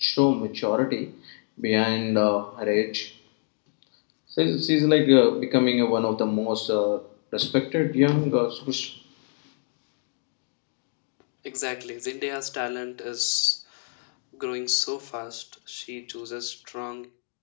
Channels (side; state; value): right; silent; 61 dB below the other